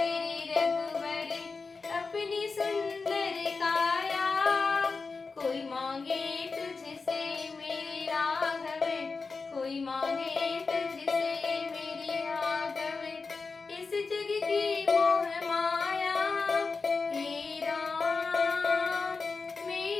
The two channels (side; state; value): right; quieter; 4.4 dB